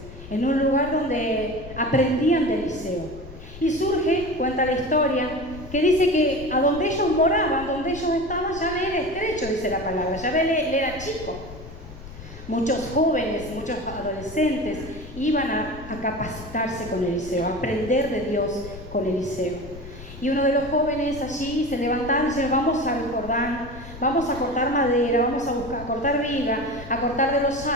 en un lugar donde aprendían de Eliseo. Y surge, cuenta la historia, que dice que a donde ellos moraban, donde ellos estaban, ya le era estrecho, dice la palabra, ya le era chico. Muchos jóvenes, muchos adolescentes iban a capacitarse con Eliseo, a aprender de Dios con Eliseo. Y uno de los jóvenes allí se levantaron y dice: vamos al Jordán, vamos a cortar madera, vamos a cortar viga, a cortar de los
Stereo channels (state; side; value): noise; left; rumble, 14 dB below the sound